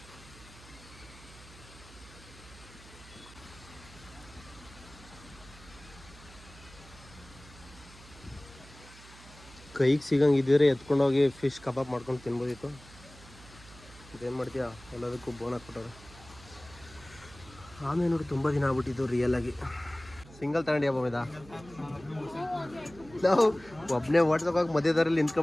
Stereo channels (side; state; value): right; noise; hum, 20 dB below the sound